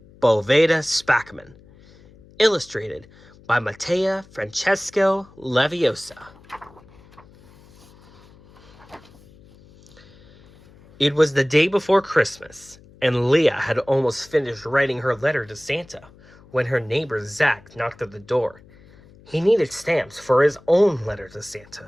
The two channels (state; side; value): noise; left; hum, 25 dB below the sound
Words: Boveda Spackman, illustrated by Mattea Francesco Leviosa. It was the day before Christmas, and Leah had almost finished writing her letter to Santa when her neighbor Zach knocked at the door. He needed stamps for his own letter to